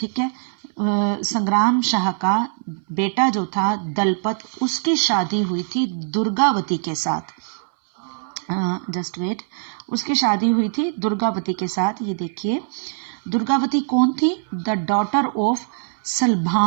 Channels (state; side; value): silent; left; 64 dB below the other